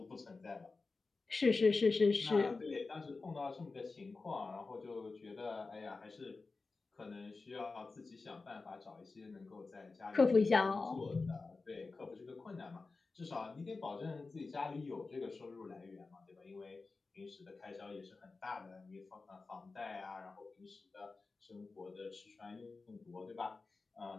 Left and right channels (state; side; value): quieter; right; 3.9 dB